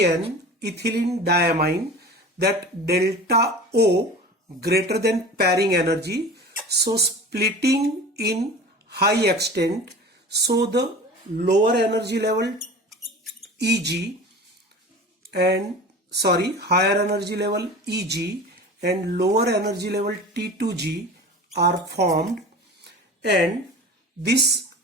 ethylene diamine, that delta O greater than pairing energy, so splitting in high extent, so the lower energy level Eg and higher energy level Eg and lower energy level T2G are formed, and this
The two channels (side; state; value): both; normal; correlation 0.37